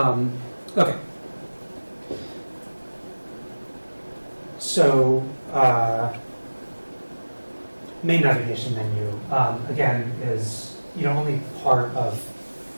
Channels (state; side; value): inverted; both; correlation -1.00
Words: So, main navigation menu, again, is only part of